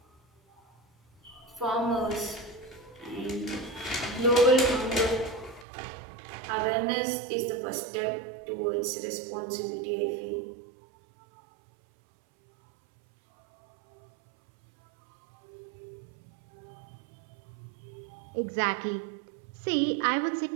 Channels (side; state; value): left; drops out; at 5.7 s